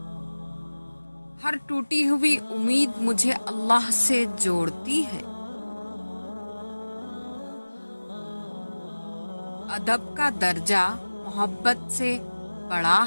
ہر ٹوٹی ہوئی امید مجھے اللہ سے جوڑتی ہے۔ ادب کا درجہ محبت سے بڑا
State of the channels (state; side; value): inverted; both; correlation -1.00